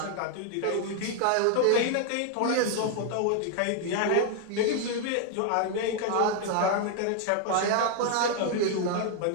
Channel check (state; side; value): different; both; correlation 0.00